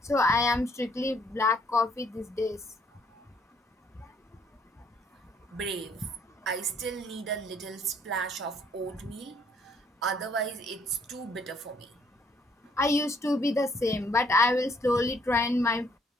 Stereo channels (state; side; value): normal; both; correlation 0.66